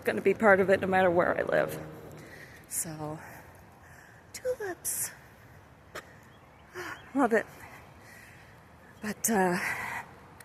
to be part of it no matter where I live. So, tulips. Love it. But,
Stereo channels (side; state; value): both; identical; correlation 1.00